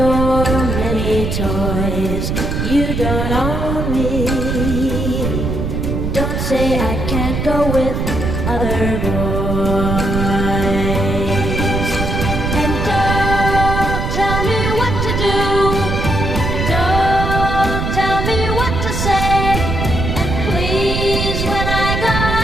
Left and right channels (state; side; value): noise; right; rumble, 1 dB below the sound